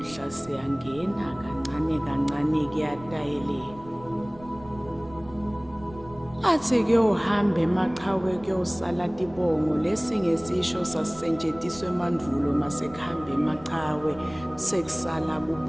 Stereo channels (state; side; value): noise; right; rumble, 20 dB below the sound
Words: siyangena kancane kancane kuyatayeleka. Athi kuyohamba emaqhawe kuyosala tibongo lesi ngesisho sasisetshenziswa emandulo masekuhamba emaqhawe sekusala